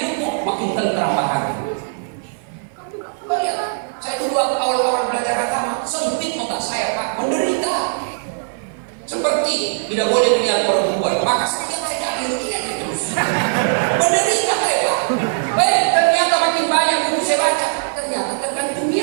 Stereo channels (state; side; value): silent; left; 55 dB below the other